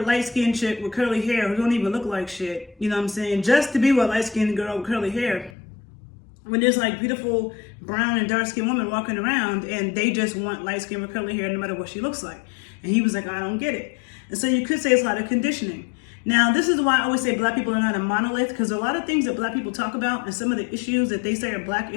light-skinned chick with curly hair who don't even look like shit, you know what I'm saying, just to be with a light-skinned girl with curly hair. When there's like beautiful brown and dark-skinned women walking around and they just want light-skinned with curly hair no matter what she looks like. And he was like, I don't get it. And so you could say it's a lot of conditioning. Now, this is why I always say Black people are not a monolith, because a lot of things that Black people talk about and some of the issues that they say are Black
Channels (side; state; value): right; drops out; at 5.5 s